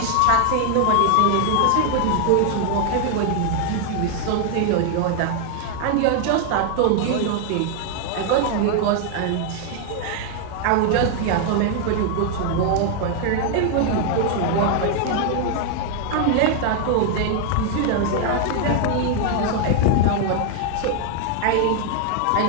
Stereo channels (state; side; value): different; both; correlation 0.00